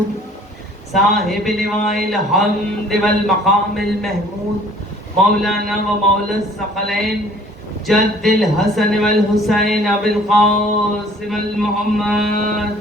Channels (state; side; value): normal; both; correlation 0.54